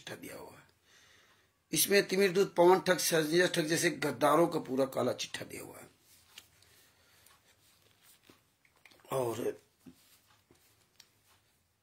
दिया हुआ है। इसमें तिमिरदूत पवन ठग संजय ठग जैसे गद्दारों का पूरा काला चिट्ठा दिया हुआ है। और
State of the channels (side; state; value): both; identical; correlation 1.00